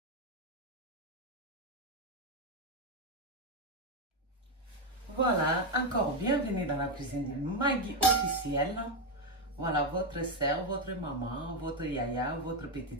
Voilà, encore bienvenue dans la cuisine de Maggie officielle. Voilà, votre sœur, votre maman, votre yaya, votre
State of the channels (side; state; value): both; normal; correlation 0.07